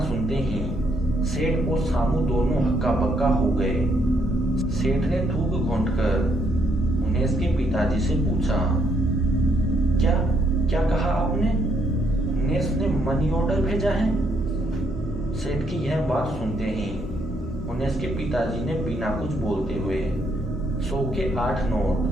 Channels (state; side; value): normal; both; correlation 0.72